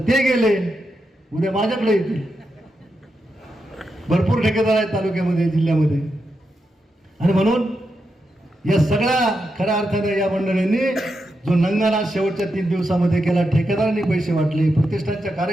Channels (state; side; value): normal; both; correlation 0.86